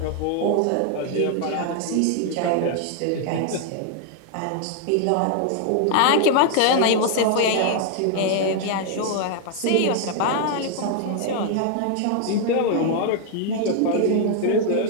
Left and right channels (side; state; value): both; different; correlation 0.00